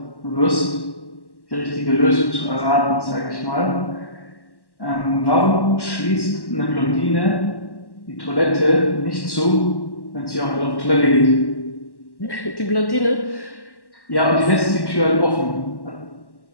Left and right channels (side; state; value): right; late; 1.1 ms